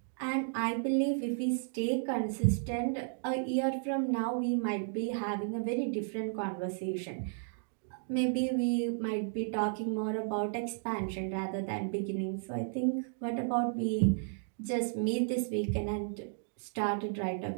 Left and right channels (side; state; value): left; silent; digital silence